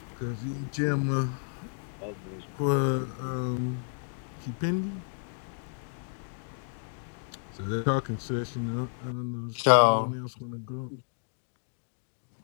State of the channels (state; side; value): silent; right; digital silence